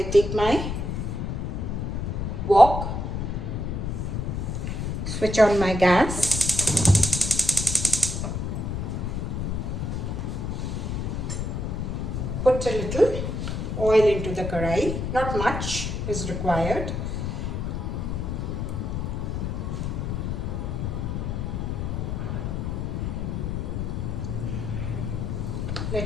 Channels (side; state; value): left; noise; rumble, 2 dB below the sound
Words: take my wok, switch on my gas, put a little oil into the karai, not much is required.